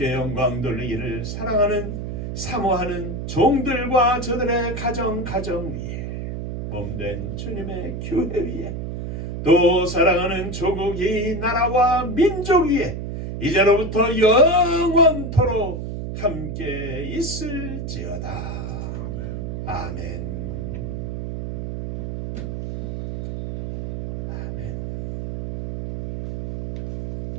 영광 돌리기를 사랑하는 사모하는 종들과 저들의 가정 위에 몸된 주님의 교회 위에 또 사랑하는 조국 이 나라와 민족 위에 이제로부터 영원토록 함께 있을지어다. 아멘.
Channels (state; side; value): noise; right; hum, 5 dB below the sound